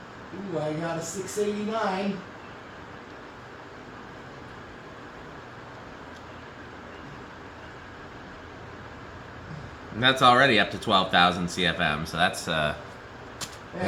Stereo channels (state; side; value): identical; both; correlation 1.00